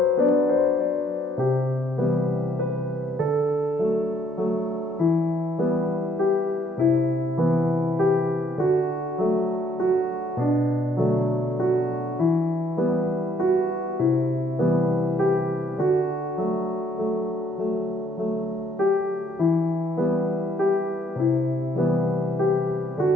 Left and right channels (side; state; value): both; normal; correlation 0.68